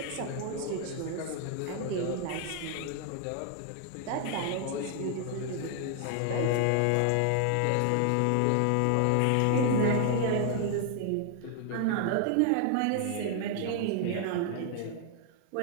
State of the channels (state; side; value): different; both; correlation 0.00